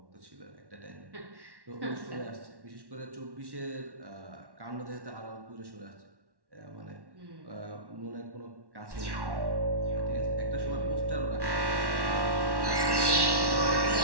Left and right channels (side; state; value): left; late; 1.1 ms